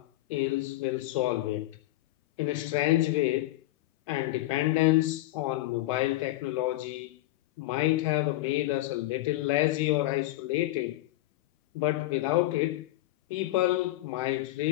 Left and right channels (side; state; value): right; quieter; 17.7 dB